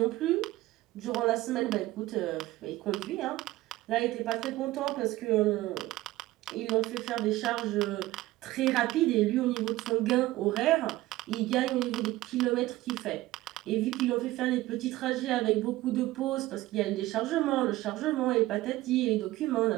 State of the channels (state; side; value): quieter; left; 17.2 dB